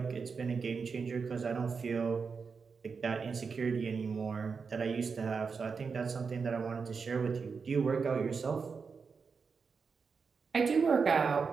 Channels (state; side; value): quieter; left; 5.3 dB